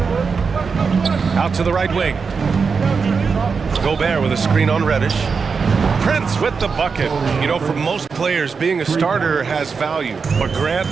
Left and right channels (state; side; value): quieter; left; 5.3 dB